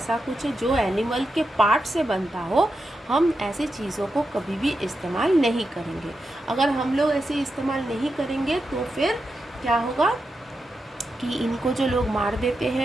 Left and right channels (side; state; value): both; normal; correlation 0.88